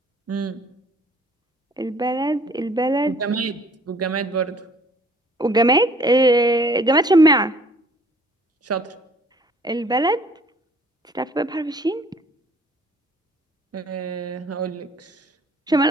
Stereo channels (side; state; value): both; normal; correlation 0.56